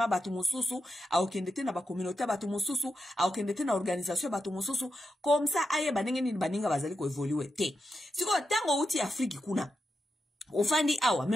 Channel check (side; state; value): both; normal; correlation 0.87